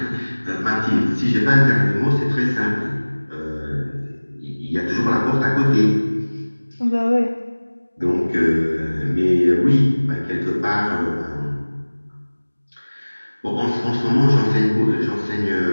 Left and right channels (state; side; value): inverted; both; correlation -1.00